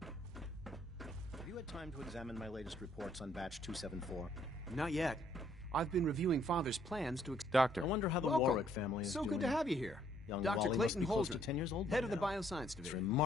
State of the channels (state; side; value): normal; both; correlation 0.66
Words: Have you had time to examine my latest reports on batch 274? Not yet. I've been reviewing Father's plans to... Doctor. I wonder how the Welcome. Warwick family is doing. So good to have you here. Young Dr. Wally must Clayton be close to Holdren, 10 years old by head of the now. Bioscience It's Division.